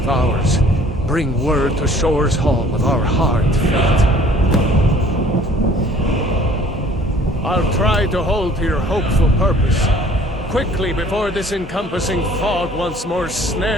Bring word to Shore's Hall of our hard fate. I'll try to hold to your hopeful purpose. Quickly, before this encompassing fog once more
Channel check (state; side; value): normal; both; correlation 0.53